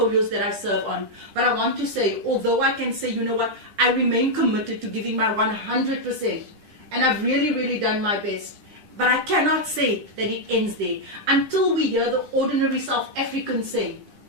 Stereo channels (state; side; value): late; left; 10 ms